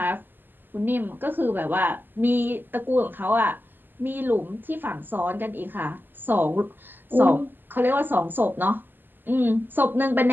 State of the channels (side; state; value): left; late; 0.092 ms